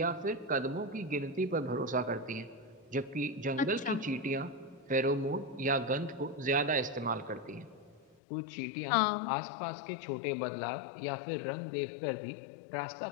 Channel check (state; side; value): drops out; right; at 8.2 s